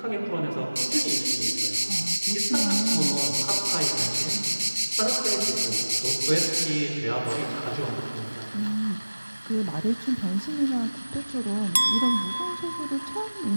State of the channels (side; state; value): both; inverted; correlation -1.00